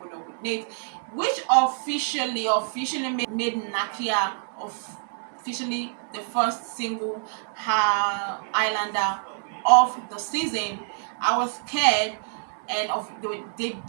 up with Nate, which officially made Nakia officially the first single Islander of the season. I was scared, and they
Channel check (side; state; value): left; silent; digital silence